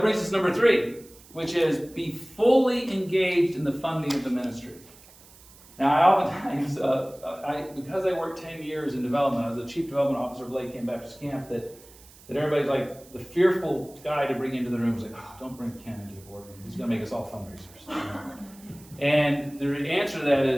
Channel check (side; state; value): right; noise; hiss, 23 dB below the sound